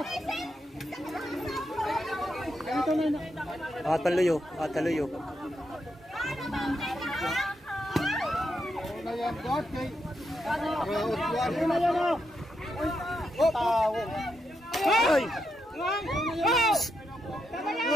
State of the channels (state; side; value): normal; both; correlation 0.83